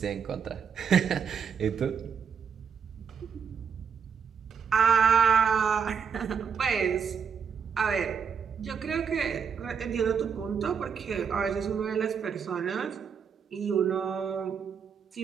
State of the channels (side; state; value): left; quieter; 6.9 dB